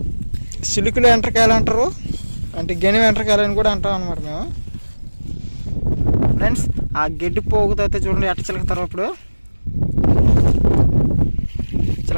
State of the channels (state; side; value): inverted; both; correlation -1.00